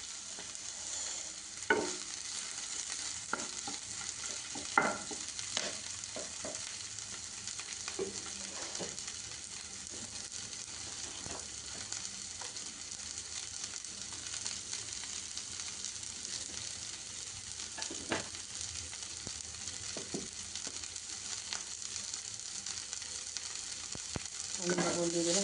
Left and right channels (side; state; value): right; noise; hum, 26 dB below the sound